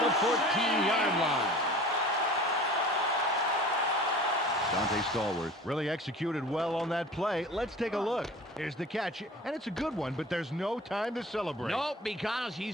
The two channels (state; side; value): normal; both; correlation 0.41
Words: the 14-yard line. Dante Stallworth really executed well on that play. Let's take a look. Here's the catch, and it's a good one, but there's no time to celebrate. Nope, because